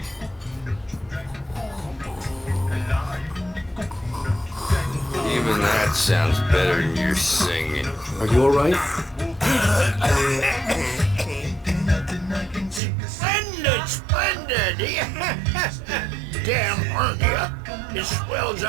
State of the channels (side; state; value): left; drops out; at 12.8 s